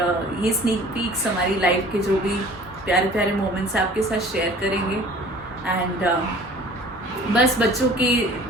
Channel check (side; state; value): both; normal; correlation 0.48